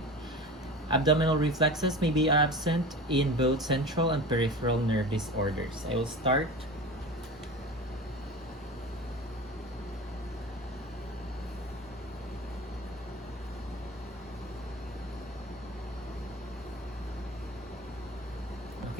Abdominal reflexes may be absent in both central and peripheral nerve disorders. I will start.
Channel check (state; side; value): normal; both; correlation 0.33